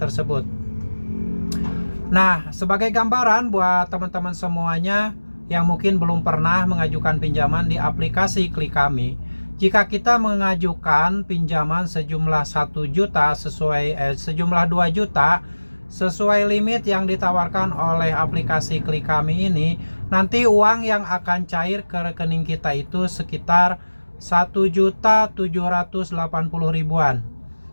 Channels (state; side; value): inverted; both; correlation -1.00